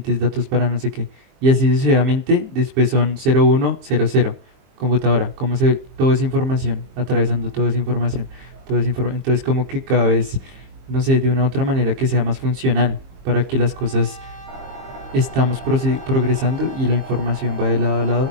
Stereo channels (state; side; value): late; left; 23 ms